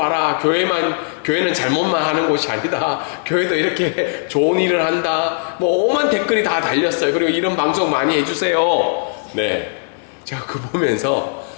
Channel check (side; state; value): right; silent; 61 dB below the other